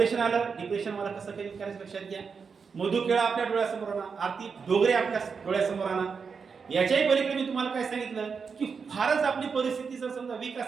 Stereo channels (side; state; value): left; quieter; 5.6 dB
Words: आलं, डिप्रेशन मला कसं काही करायचं लक्षात घ्या. मधु केळा आपल्या डोळ्यासमोर आणा, आरती डोगरे आपल्या डोळ्यासमोर आणा. याच्याही पलीकडे मी तुम्हाला काय सांगितलं की फारच आपली परिस्थिती जर समजा वीक